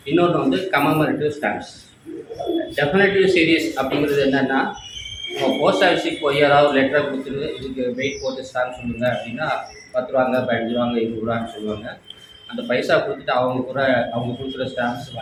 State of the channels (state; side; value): identical; both; correlation 1.00